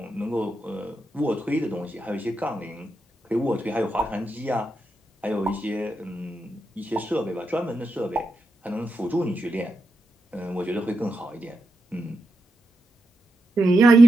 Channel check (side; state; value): both; normal; correlation 0.86